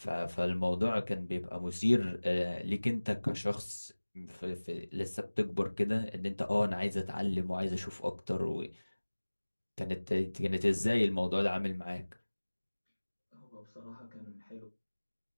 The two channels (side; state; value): both; inverted; correlation -1.00